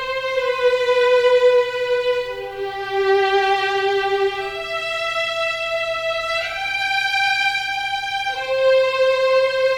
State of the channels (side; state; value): both; identical; correlation 1.00